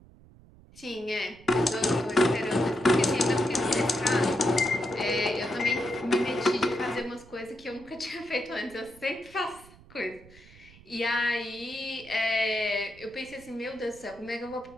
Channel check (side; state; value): right; noise; rumble, 23 dB below the sound